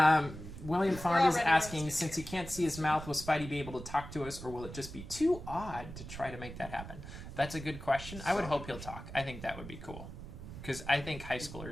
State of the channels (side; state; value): right; noise; rumble, 11 dB below the sound